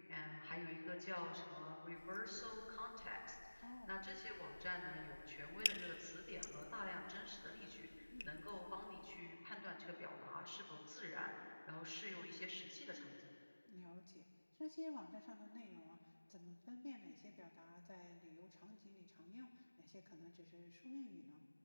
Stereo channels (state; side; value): inverted; both; correlation -1.00